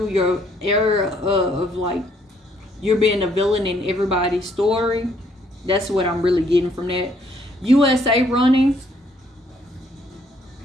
your era of like you're being a villain in everybody's story. That's what I'm really getting from that. USA running.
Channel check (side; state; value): both; normal; correlation 0.67